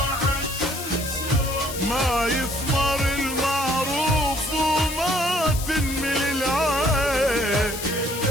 ما يثمر المعروف وما تنمل العين،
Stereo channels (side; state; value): left; noise; hiss, 9 dB below the sound